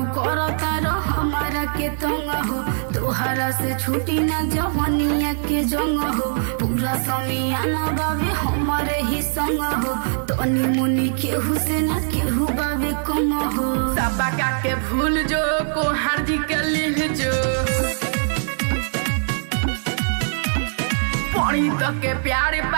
करो तारो हमारा के तंग हो, तोहरा से छुटी ना जवनिया के जंग हो। पूरा समियाना बाबे हमारे ही संग हो, तनी मुनी केहू से ना केहू बाबे कम हो। सबका के भूल जो को हार्जी के लिह जो पानी तक के प्यारे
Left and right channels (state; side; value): silent; left; digital silence